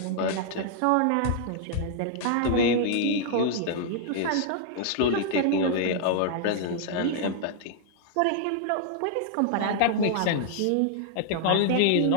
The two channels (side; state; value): both; different; correlation -0.01